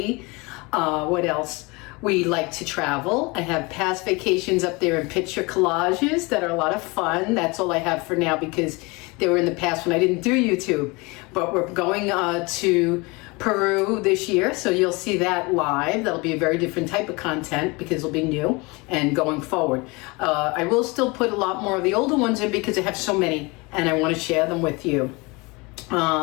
What else? We like to travel. I have past vacations up there in picture collages that are a lot of fun. That's all I have for now because they were in the past when I didn't do YouTube. But we're going to Peru this year, so you'll see that live. That'll be a very different type of content because it'll be new and going forward. I will still put a lot more of the older ones in because I have so many and I want to share them with you.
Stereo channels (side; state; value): right; quieter; 26.2 dB